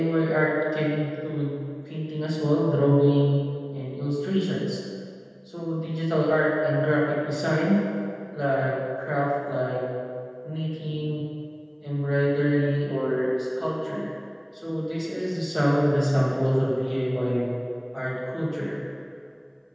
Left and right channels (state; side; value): identical; both; correlation 1.00